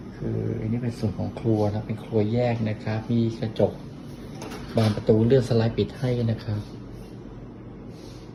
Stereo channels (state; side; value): identical; both; correlation 1.00